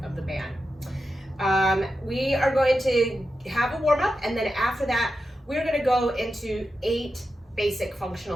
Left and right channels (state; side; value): normal; both; correlation 0.90